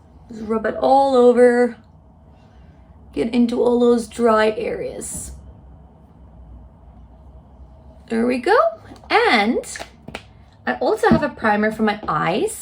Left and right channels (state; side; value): identical; both; correlation 1.00